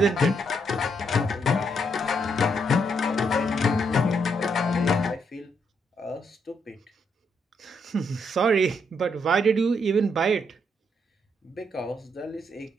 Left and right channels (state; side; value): normal; both; correlation 0.76